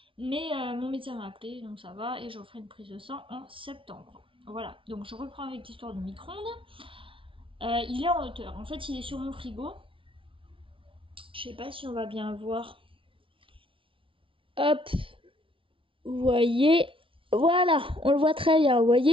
Mais mon médecin m'a appelé, donc ça va, et je referai une prise de sang en septembre. Voilà, donc je reprends avec l'histoire du micro-ondes. Il est en hauteur, en fait il est sur mon frigo. Je sais pas si on va bien voir. Hop, vous voyez, voilà, on le voit très bien. Vous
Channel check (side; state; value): left; late; 0.25 ms